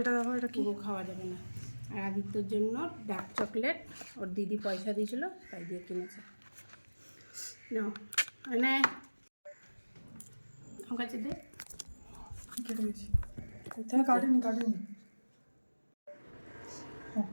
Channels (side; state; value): both; inverted; correlation -1.00